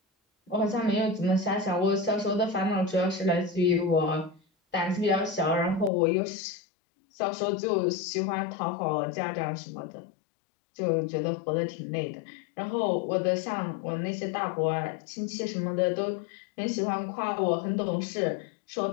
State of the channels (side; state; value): right; drops out; at 5.9 s